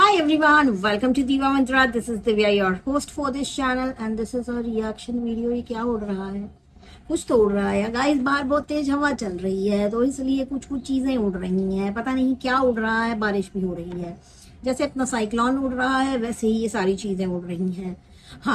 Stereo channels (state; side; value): identical; both; correlation 1.00